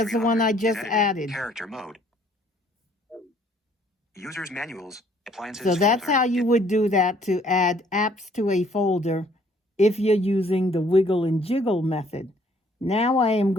the one I is just editing. added. Character mode. Users manuals. Appliances So that's folder. how you would do that to add apps to a folder if you're using the wiggle and jiggle method. Now I am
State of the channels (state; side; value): normal; both; correlation 0.61